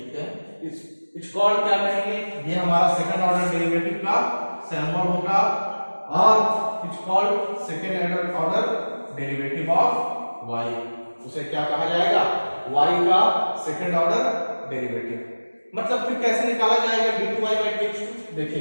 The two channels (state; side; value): inverted; both; correlation -1.00